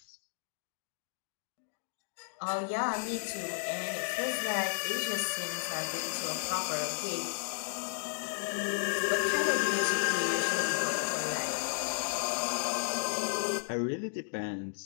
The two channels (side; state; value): right; silent; digital silence